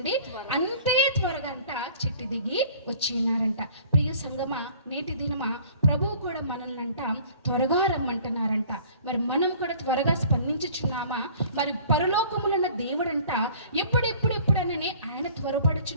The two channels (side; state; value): both; inverted; correlation -0.50